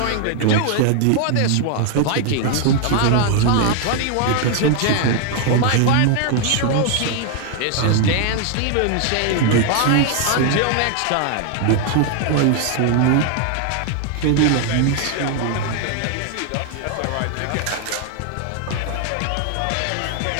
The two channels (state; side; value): different; both; correlation 0.00